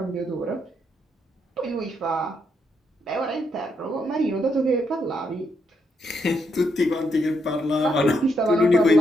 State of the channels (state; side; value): normal; both; correlation 0.78